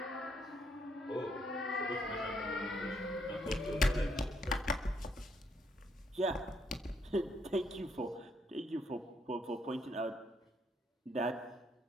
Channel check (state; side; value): normal; both; correlation 0.73